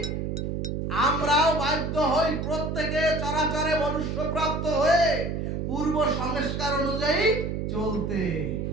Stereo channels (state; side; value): noise; right; hum, 2 dB below the sound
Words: আমরাও বাধ্য হই প্রত্যেকে চরাচরে মনুষ্য প্রাপ্ত হয়ে পূর্ব সংস্কার অনুযায়ী চলতে।